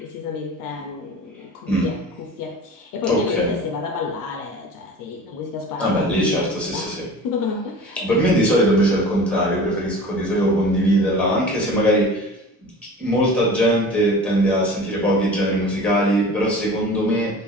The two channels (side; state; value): both; normal; correlation 0.39